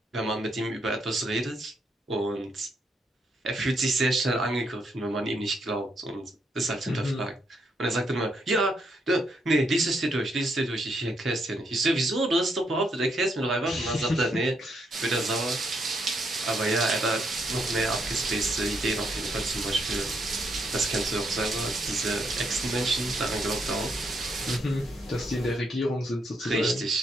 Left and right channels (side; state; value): both; normal; correlation 0.76